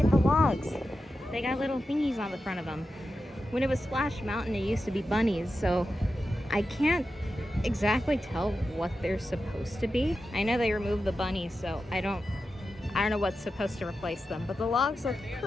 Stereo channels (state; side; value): normal; both; correlation 0.91